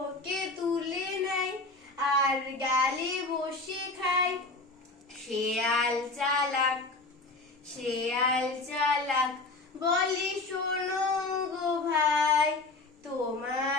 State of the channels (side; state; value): right; quieter; 3.3 dB